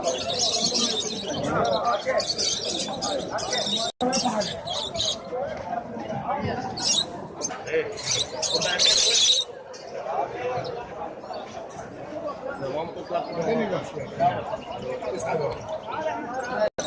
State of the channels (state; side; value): identical; both; correlation 1.00